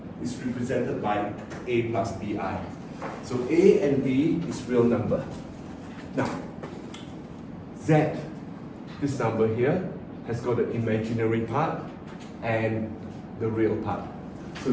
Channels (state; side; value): identical; both; correlation 1.00